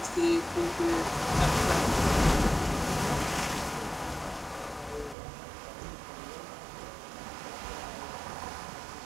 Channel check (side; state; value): left; drops out; at 5.2 s